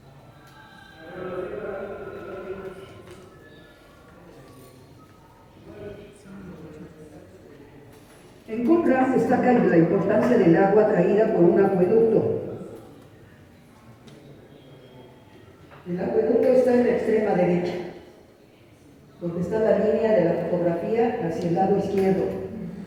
En Qumran destaca la importancia del agua traída por un acueducto. El acueducto está en la extrema derecha, donde está la línea de la fotografía hacia el lado izquierdo.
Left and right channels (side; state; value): both; identical; correlation 1.00